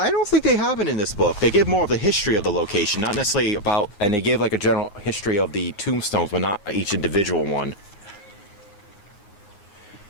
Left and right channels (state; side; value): late; right; 9.6 ms